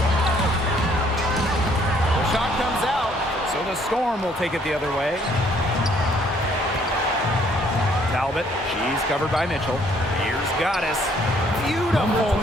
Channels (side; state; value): both; normal; correlation 0.64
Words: The shot comes out, so the Storm will take it the other way. Talbot, she's covered by Mitchell. Here's Goddess. Beautiful